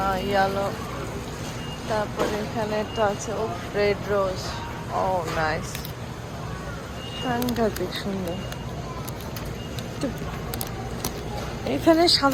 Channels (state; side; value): identical; both; correlation 1.00